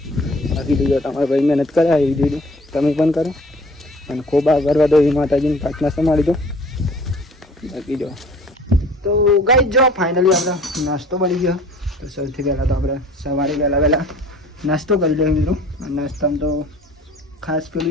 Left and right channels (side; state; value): both; normal; correlation 0.49